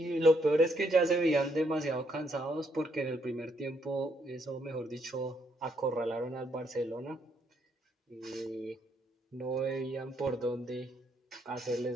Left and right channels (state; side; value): normal; both; correlation 0.73